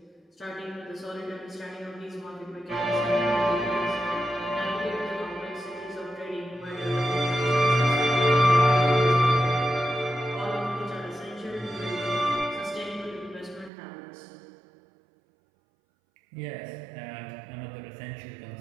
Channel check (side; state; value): left; drops out; at 13.7 s